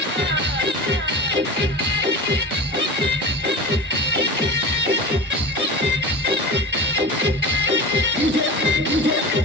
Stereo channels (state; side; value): normal; both; correlation 0.30